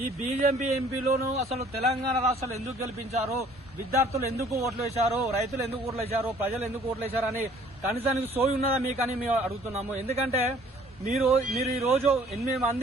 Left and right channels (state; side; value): normal; both; correlation 0.56